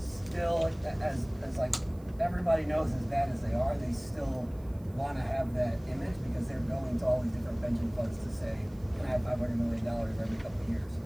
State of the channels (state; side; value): noise; right; hiss, 28 dB below the sound